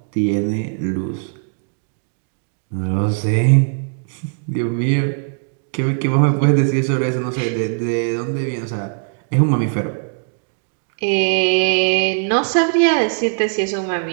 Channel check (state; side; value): silent; left; 65 dB below the other